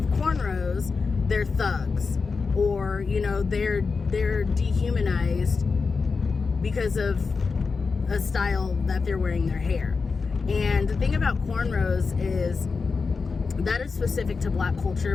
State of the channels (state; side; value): quieter; right; 4.7 dB